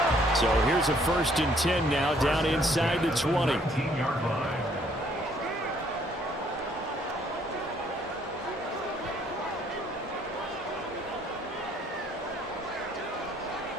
So here's a 1st and 10 now down inside the 20. 19-yard line.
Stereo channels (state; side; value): normal; both; correlation 0.64